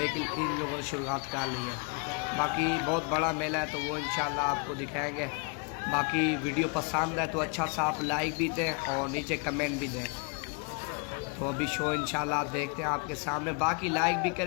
इन लोगों ने शुरुआत कर ली है। बाकी बहुत बड़ा मेला है, तो वो इंशाल्लाह आपको दिखाएंगे। बाकी वीडियो पसंद है तो अच्छा सा आप लाइक भी दें और नीचे कमेंट भी दें। तो अभी शो इंशाल्लाह देखते हैं आपके सामने। बाकी लाइक भी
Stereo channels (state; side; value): quieter; right; 36.3 dB